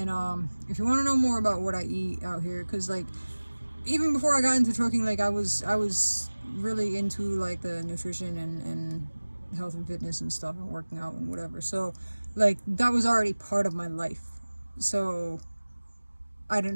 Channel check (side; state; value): both; inverted; correlation -1.00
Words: if you want to know more about what I eat out here, because like even before I got into trucking, like I was really into like the nutrition and health and fitness and stuff, and working out and whatever. So like that was already part of my life, so I